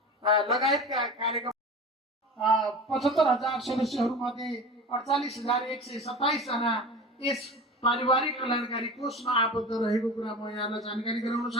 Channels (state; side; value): normal; both; correlation 0.33